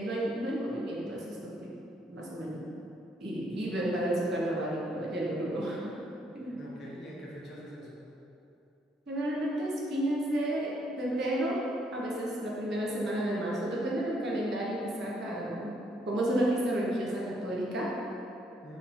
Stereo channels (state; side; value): normal; both; correlation 0.71